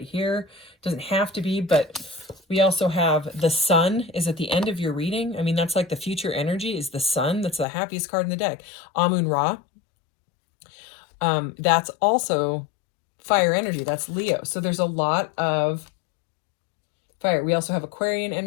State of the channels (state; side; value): drops out; right; at 7.7 s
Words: here. Doesn't have to be, but we also have the Sun is at the end of your reading. I mean, that's like the future energy is the Sun. That's the happiest card in the deck. Amun Ra. That's also fire energy. That's Leo. So there's a lot of fire. We also have Aquarian